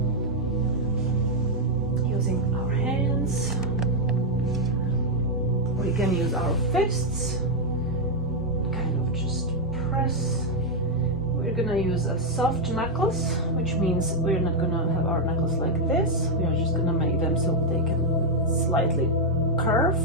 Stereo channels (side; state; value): both; normal; correlation 0.00